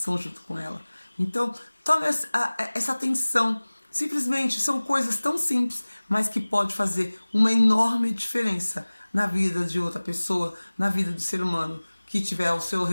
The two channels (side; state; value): both; inverted; correlation -1.00